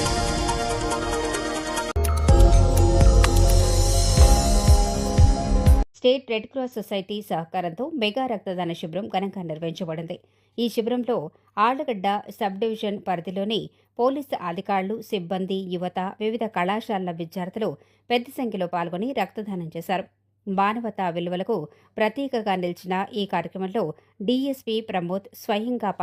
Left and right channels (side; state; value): both; identical; correlation 1.00